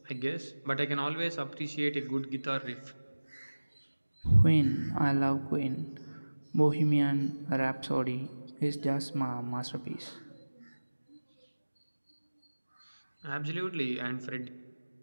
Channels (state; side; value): inverted; both; correlation -1.00